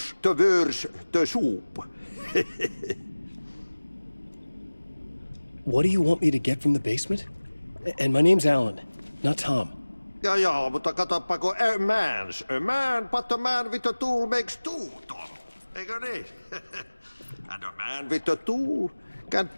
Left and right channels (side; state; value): both; inverted; correlation -1.00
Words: the worse the soup. What do you want me to get from the basement? And my name's Alan, not Tom. Ja, mutta katoppa, a man, but a man with a tool makes two, Tom. Eikö niin? And a man with a tool can